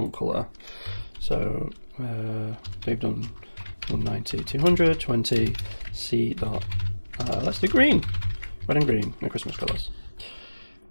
color. So they've done 190, 200, 20, C dot, let's do green, red and green, no Christmas colors.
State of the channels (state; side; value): inverted; both; correlation -1.00